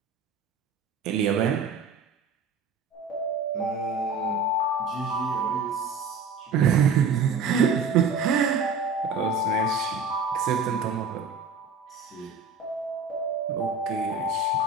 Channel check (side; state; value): left; quieter; 4.3 dB